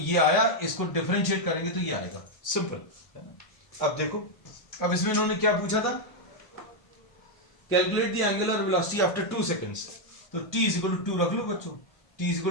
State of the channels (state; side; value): late; right; 1.0 ms